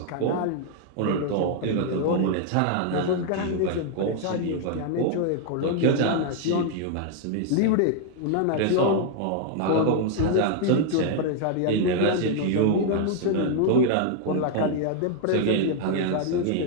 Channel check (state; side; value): different; both; correlation 0.00